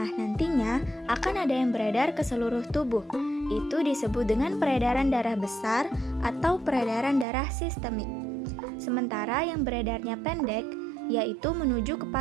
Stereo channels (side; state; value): left; drops out; at 7.2 s